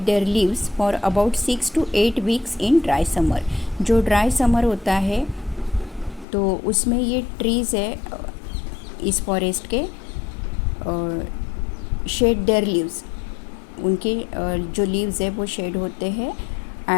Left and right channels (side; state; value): right; drops out; at 6.2 s